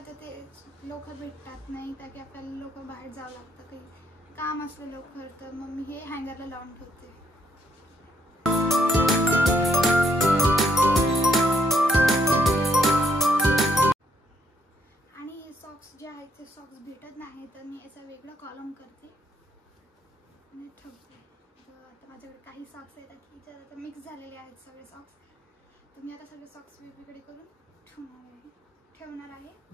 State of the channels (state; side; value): normal; both; correlation 0.71